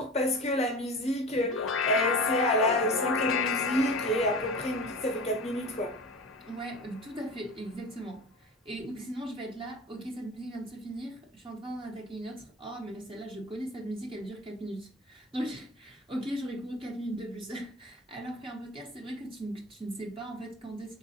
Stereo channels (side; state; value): both; normal; correlation 0.34